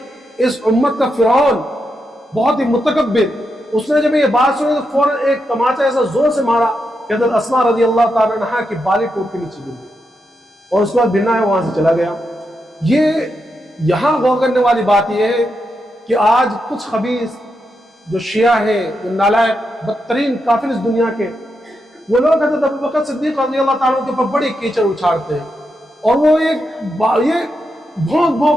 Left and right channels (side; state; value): both; normal; correlation 0.85